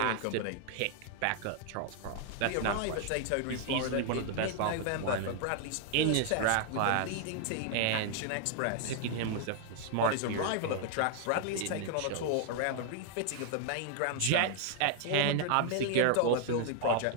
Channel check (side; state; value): both; different; correlation 0.00